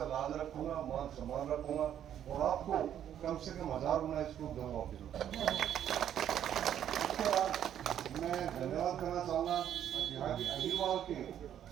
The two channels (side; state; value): left; quieter; 10.2 dB